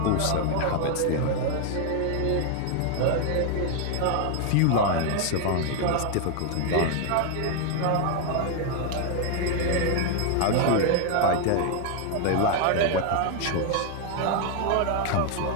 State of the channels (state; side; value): different; both; correlation 0.00